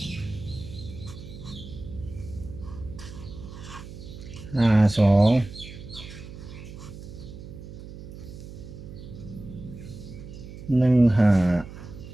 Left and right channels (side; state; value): right; noise; hum, 13 dB below the sound